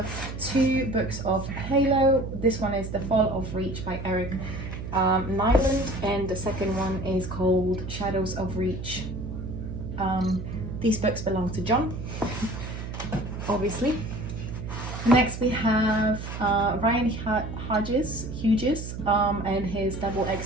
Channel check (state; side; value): noise; right; hum, 7 dB below the sound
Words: two books of Halo. This one is The Fall of Reach by Eric Nyland, and the second one is called Shadows of Reach. These books belong to John, obviously. Next we have Ryan Hughes and his Double